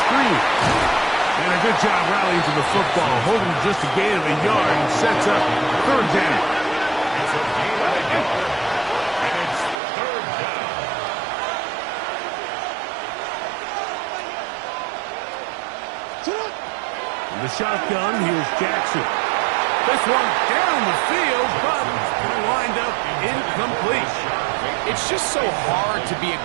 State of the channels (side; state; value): left; drops out; at 9.8 s